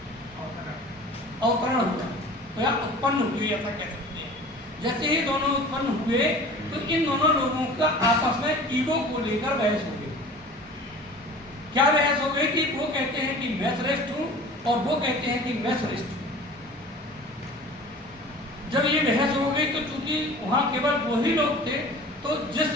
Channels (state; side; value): normal; both; correlation 0.42